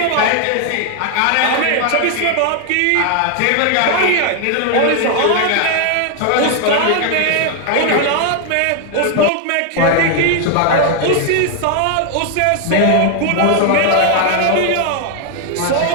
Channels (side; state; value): both; different; correlation 0.00